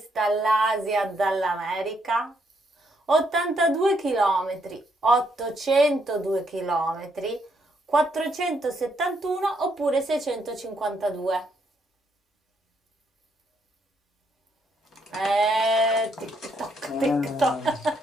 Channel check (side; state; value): both; normal; correlation 0.74